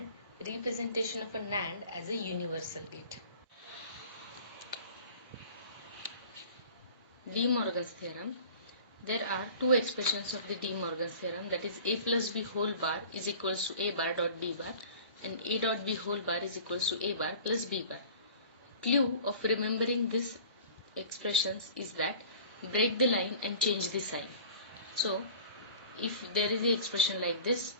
representation of a NAND as a universal gate. De Morgan's theorem. There are two expressions of the De Morgan's theorem, that is a plus b whole bar is equals to a bar dot b bar and a dot b whole bar is equals to a bar plus b bar. Clue of remembering these expressions is that break the line and change the sign. So if there is the expression like this,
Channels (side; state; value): both; inverted; correlation -0.44